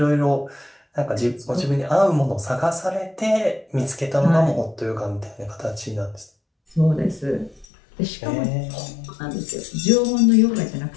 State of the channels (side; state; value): right; drops out; at 7.7 s